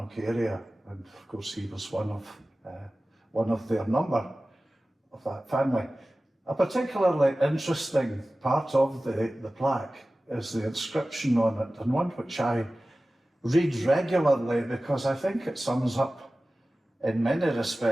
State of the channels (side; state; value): both; normal; correlation 0.96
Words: area. And of course, he was one of their number of that family. A particularly interesting part of the plaque is the inscription on it, and one which I read regularly because I think it sums up in many